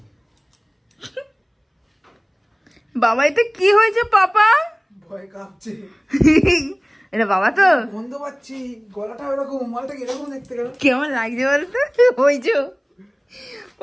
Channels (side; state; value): both; identical; correlation 1.00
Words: বাবা এটা কি হয়েছে পাপা? ভয় কাঁপছে। এটা বাবা তো গন্ধ পাচ্ছি, গলাটা এরকম, মালটা এরকম দেখতে গেল। কেমন লাগছে বলতো? ওই যে